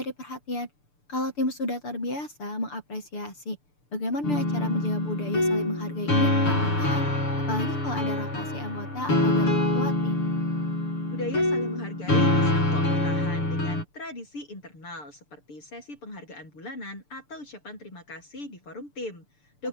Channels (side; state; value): right; late; 6.8 ms